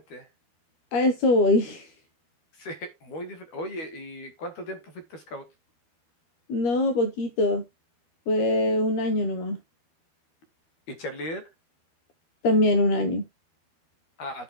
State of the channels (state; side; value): late; right; 12 ms